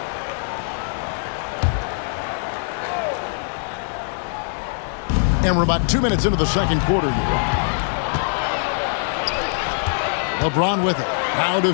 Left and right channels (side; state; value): right; silent; digital silence